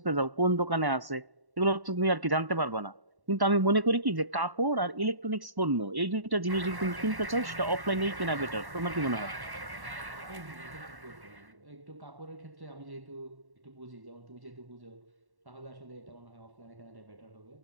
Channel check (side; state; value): left; late; 1.1 ms